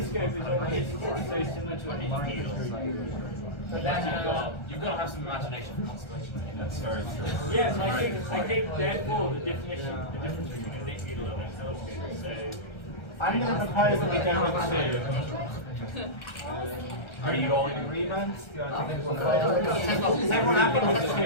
is already so similar to a knitting needle. But then you've got to have some imagination for constellation. That's very true. Yes, I think therefore the difference between a knitting needle and a telescope is so. I'm going to propose that we go with 2. Are you all in agreement? Is everyone happy with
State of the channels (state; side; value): late; right; 1.3 ms